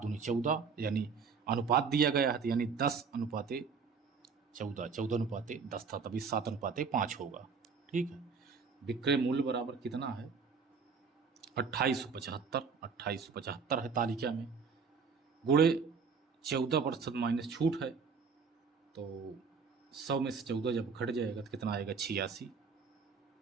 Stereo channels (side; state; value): left; quieter; 5.4 dB